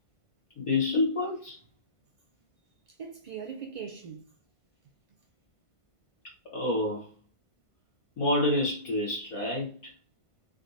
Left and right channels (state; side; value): late; right; 1.5 ms